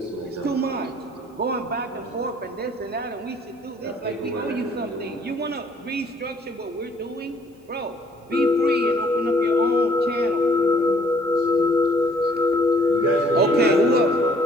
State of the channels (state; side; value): normal; both; correlation 0.60